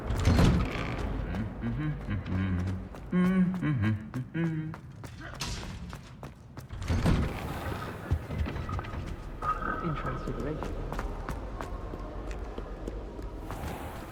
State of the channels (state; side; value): identical; both; correlation 1.00